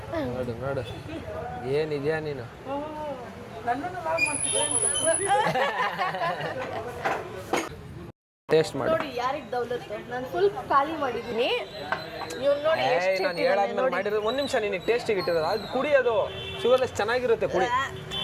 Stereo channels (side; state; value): both; identical; correlation 1.00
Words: ನೋಡು ನೋಡು, ಏನಿದ್ಯಾ ನೀನು? ನನ್ನನ್ನು ಲಾಗ್ ಮಾಡ್ತಿದ್ದೆ. ಟೇಸ್ಟ್ ಮಾಡಿ ನೋಡಿ ಯಾರಿಗೆ ದೌಲತ್ತು. ನಾನು ಫುಲ್ ಖಾಲಿ ಮಾಡಿದ್ದೀನಿ. ಇವ್ನು ನೋಡಿ ಎಷ್ಟು ನಾನು ಹೇಳಾದ್ಮೇಲೆ ಮಾಡಿರೋದು. ಒಂದು ನಿಮಿಷ, ನಿನಗೆ ಟೇಸ್ಟಿಗೆ ಇಟ್ಟಿರೋದು ಅದು ಕುಡಿಯೋದು. ಶುಗರ್ಲೆಸ್ ಚೆನ್ನಾಗಿರುತ್ತೆ, ಕುಡಿ.